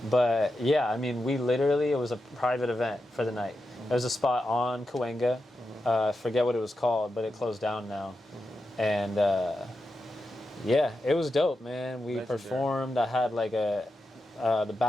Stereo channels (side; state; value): both; normal; correlation 0.89